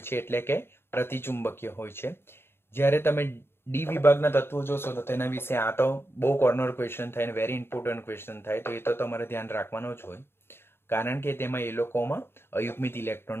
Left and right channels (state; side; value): late; right; 0.11 ms